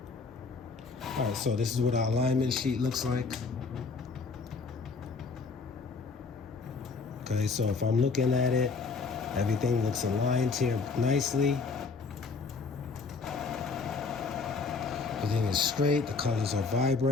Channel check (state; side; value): quieter; right; 4.6 dB